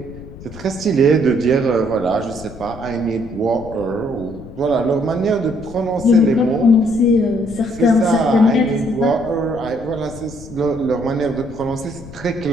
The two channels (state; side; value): noise; left; rumble, 16 dB below the sound